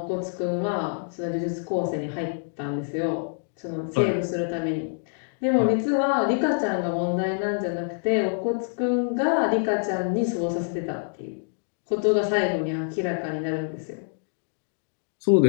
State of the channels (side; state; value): right; silent; digital silence